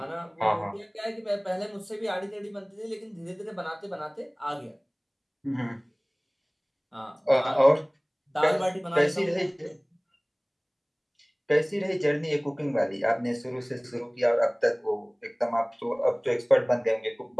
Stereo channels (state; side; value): identical; both; correlation 1.00